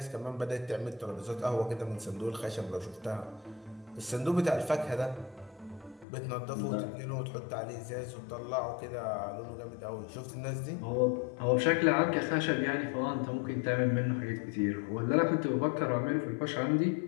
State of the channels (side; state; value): right; drops out; at 6.1 s